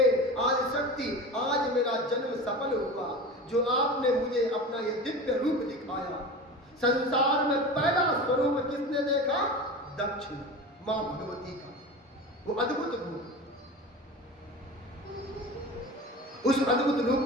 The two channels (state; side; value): normal; both; correlation 0.31